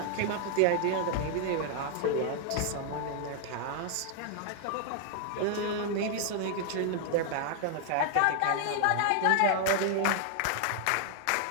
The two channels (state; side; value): different; both; correlation 0.00